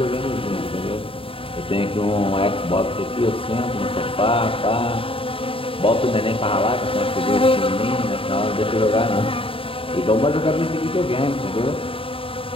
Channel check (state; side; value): late; right; 0.26 ms